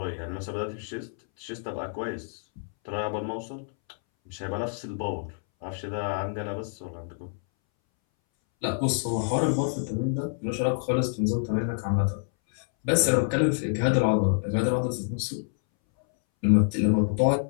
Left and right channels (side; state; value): right; silent; 60 dB below the other